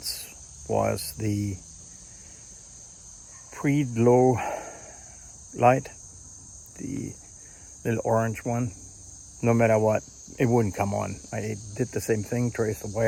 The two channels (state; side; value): identical; both; correlation 1.00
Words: was the pre-glow light, the little orange one. No matter what, it wouldn't come on. I did the same thing, traced the